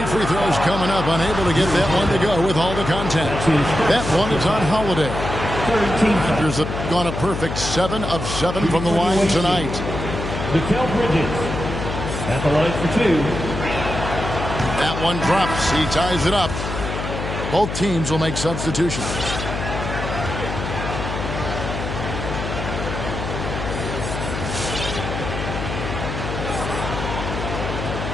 free throws coming up. Unable to get that one to go with all the contact. That one is on Holiday. Raptors have gone a perfect 7 of 7 from the line tonight. Mikal Bridges at the line for 2. That one drops. He ties it up. Both teams will make substitutions.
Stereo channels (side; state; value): left; noise; hum, 5 dB below the sound